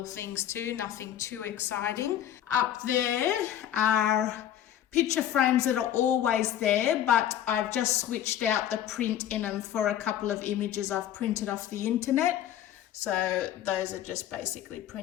things to, nothing too exciting. Up there are picture frames that are always there, but I've just switched out the print in them for a couple of images I've printed off the internet. So those are just basically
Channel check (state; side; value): quieter; right; 11.1 dB